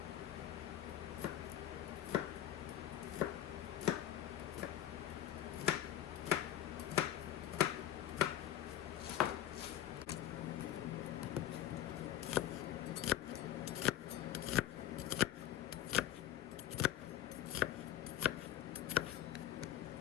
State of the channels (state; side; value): quieter; right; 11.9 dB